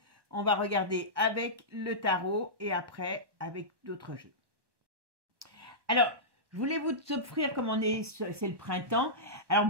on va regarder avec le tarot et après avec d'autres jeux. Alors, je voulais vous offrir, comme c'est le printemps. Alors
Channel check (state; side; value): late; left; 1.2 ms